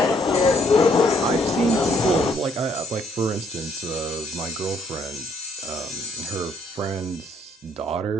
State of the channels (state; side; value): normal; both; correlation 0.67